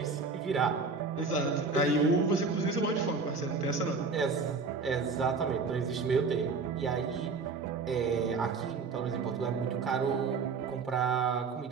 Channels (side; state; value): left; quieter; 4.5 dB